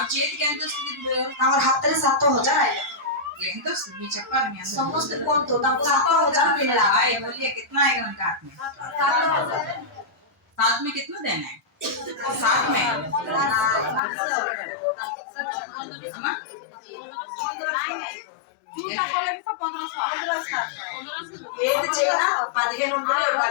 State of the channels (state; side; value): drops out; right; at 14.0 s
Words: చేతికి ఎంత వస్తుంది ఇప్పుడు? ତାଙ୍କର ହାତରେ 7,000 ଆଇଲା। ఎంత వస్తుంది మీరు చెప్పాలి. మీ అందరూ ସମସ୍ତେ କୁହନ୍ତୁ ତାଙ୍କୁ 7,000 मिला। भाई बोलिए कितना आएगा उनका हाथ में? साथ में कितना देना है? साथ में अम्मा? ఏది చేసినా 15 వందలు